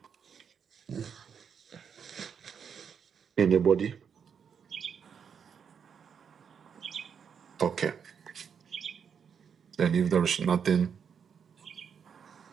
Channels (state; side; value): quieter; left; 7.1 dB